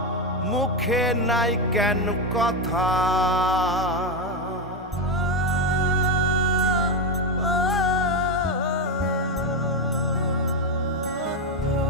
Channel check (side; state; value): both; normal; correlation 0.10